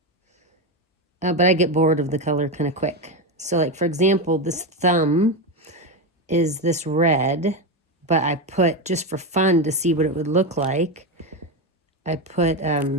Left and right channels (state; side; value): normal; both; correlation 0.12